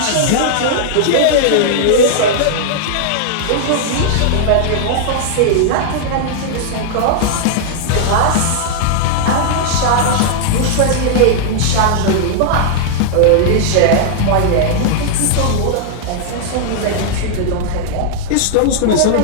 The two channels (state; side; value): different; both; correlation -0.01